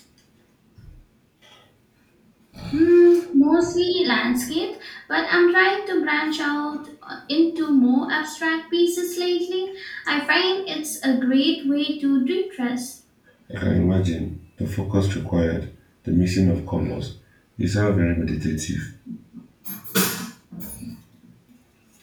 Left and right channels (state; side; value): identical; both; correlation 1.00